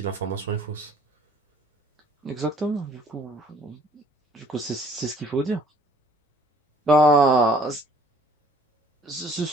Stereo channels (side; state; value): both; normal; correlation 0.58